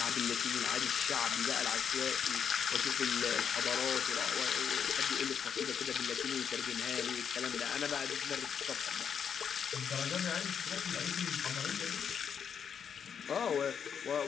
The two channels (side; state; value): right; quieter; 7.5 dB